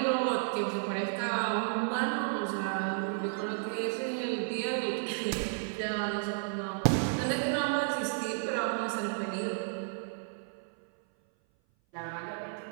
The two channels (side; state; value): left; silent; 56 dB below the other